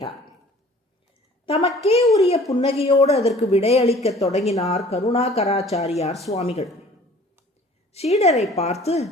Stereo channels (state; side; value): normal; both; correlation 0.50